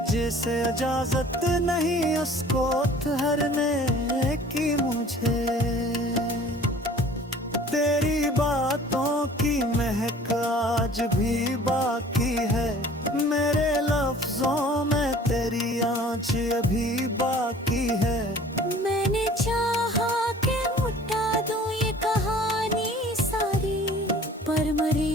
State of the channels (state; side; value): normal; both; correlation 0.49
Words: जिसे इजाजत नहीं उसको ठहरने की मुझे। तेरी बातों की महक आज भी बाकी है, मेरे लफ्जों में तेरी आँच अभी बाकी है। मैंने चाहा कि मिटा दूं ये कहानी सारी, पर मरी